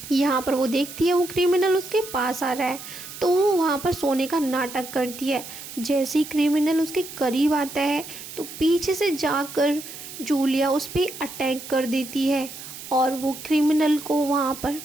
यहाँ पर वो देखती है वो क्रिमिनल उसके पास आ रहा है, तो वो वहाँ पर सोने का नाटक करती है। जैसे ही क्रिमिनल उसके करीब आता है तो पीछे से जाकर जूलिया उस पर अटैक कर देती है और वो क्रिमिनल को वहाँ पर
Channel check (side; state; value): right; noise; hiss, 12 dB below the sound